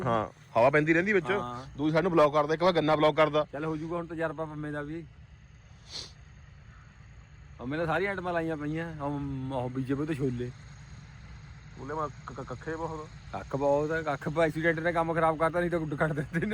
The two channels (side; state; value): both; identical; correlation 1.00